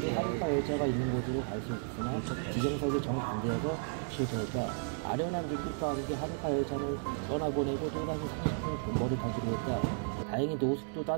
하루카 열차가 있는 곳으로 갈 수 있었으나 지정석이 정반대여서 실패했다. 아련한 눈빛과 함께 하루카 열차는 떠나보내고 또다시 30분 존버를 타기로 했다. 다행히 노숙도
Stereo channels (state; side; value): silent; left; 55 dB below the other